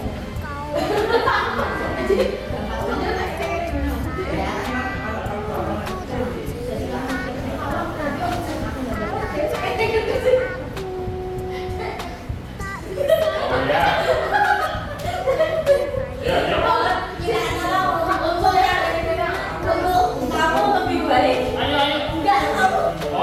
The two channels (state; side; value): identical; both; correlation 1.00